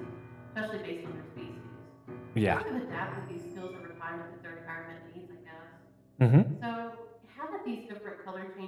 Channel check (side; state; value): both; identical; correlation 1.00